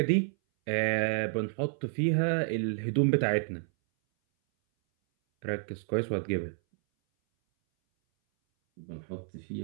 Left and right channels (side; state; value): left; silent; 58 dB below the other